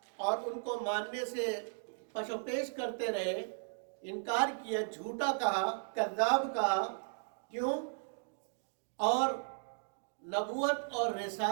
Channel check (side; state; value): left; silent; digital silence